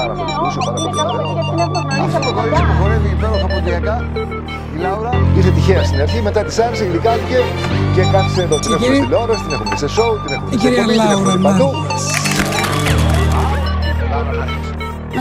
πάρα πολύ. Είναι καλό παιδί γιατί είναι προγραμματής από κοντά. Χορεύει υπέροχα ποδιακά. Η Λάουρα είχε τυχαία στην αρχή, μετά της άρεσε, γλυκάθηκε και κάθισε εδώ. Την έχουμε στην τηλεόραση, την έχουμε σε σοου, την έχουμε σε κομμάτι, την έχουμε παντού.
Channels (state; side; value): identical; both; correlation 1.00